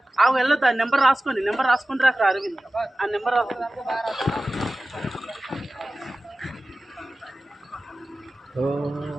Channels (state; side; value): normal; both; correlation 0.96